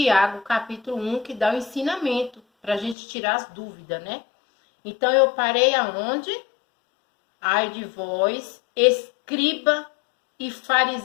capítulo 1, que dá o ensinamento para a gente tirar as dúvidas, né? Então eu parei aonde? Ai de vós, escriba e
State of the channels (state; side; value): drops out; right; at 3.0 s